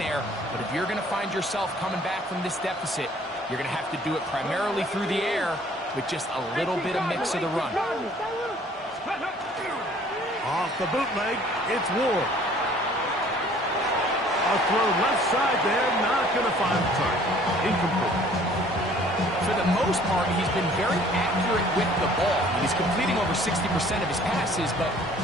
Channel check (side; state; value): both; normal; correlation 0.55